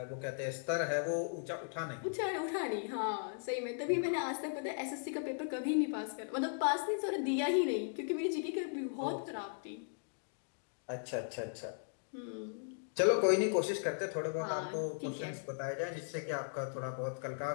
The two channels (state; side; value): silent; right; digital silence